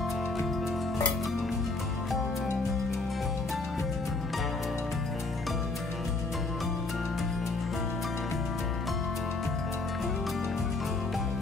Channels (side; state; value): right; quieter; 3.3 dB